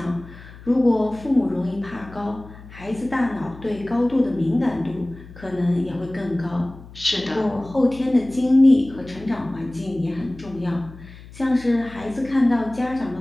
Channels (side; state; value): left; noise; hum, 18 dB below the sound